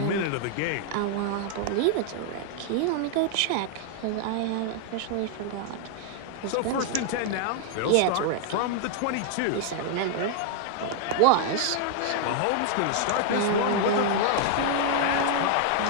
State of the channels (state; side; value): different; both; correlation -0.01